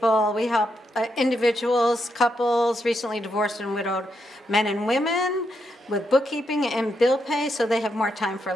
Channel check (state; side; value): normal; both; correlation 0.81